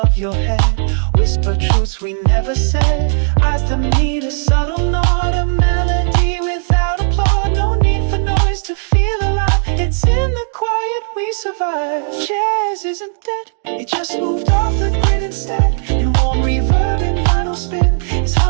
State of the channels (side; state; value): left; silent; 70 dB below the other